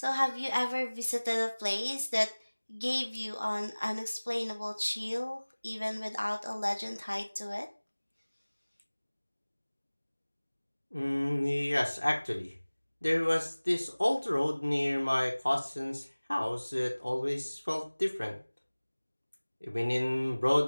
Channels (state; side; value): inverted; both; correlation -1.00